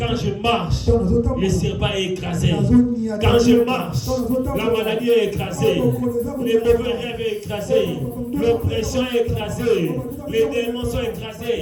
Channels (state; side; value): identical; both; correlation 1.00